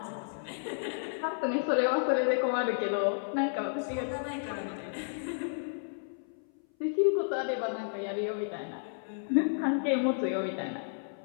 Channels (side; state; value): right; silent; 56 dB below the other